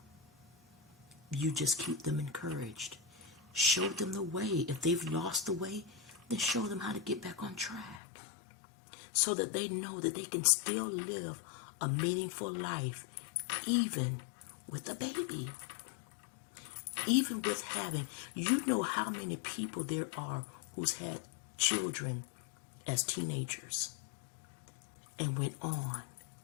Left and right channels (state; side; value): drops out; right; at 8.0 s